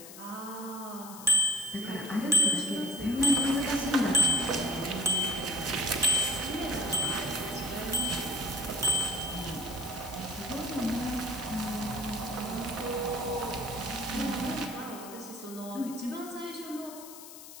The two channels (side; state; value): left; noise; hiss, 15 dB below the sound